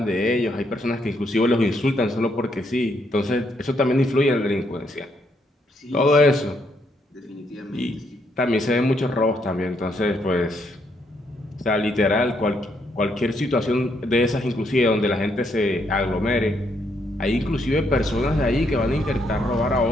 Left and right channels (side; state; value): both; normal; correlation 0.74